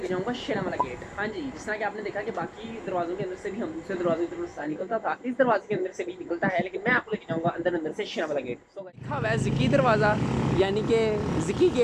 जाऊंगा शेरावाला गेट। हाँ जी, जिस तरह कि आपने देखा कि बाकी दरवाजों के अंदर से भी हम दूसरे दरवाजे की तरफ से निकलता था, इस दरवाजे के अंदर से भी निकलता है, लेकिन मैं आपको लेके जाऊंगा अंदर से शेरावाला गेट। सो गाइस, लिखा हुआ है ज़की दरवाज़ा, यानी कि ज़की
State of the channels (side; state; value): both; identical; correlation 1.00